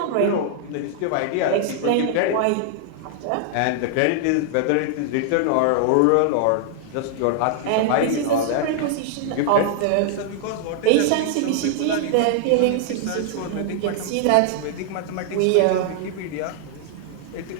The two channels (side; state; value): both; different; correlation -0.01